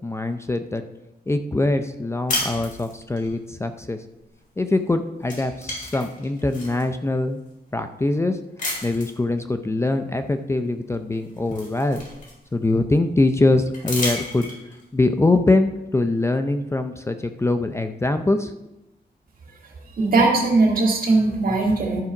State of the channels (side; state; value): both; normal; correlation 0.81